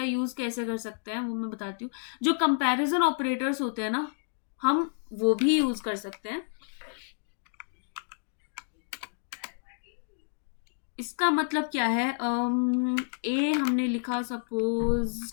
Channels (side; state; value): right; silent; digital silence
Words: यूज़ कैसे कर सकते हैं वो मैं बताती हूँ। जो कंपैरिजन ऑपरेटर्स होते हैं ना, हम वो भी यूज़ कर सकते हैं। इसका मतलब क्या है, ए हमने लिखा सपोज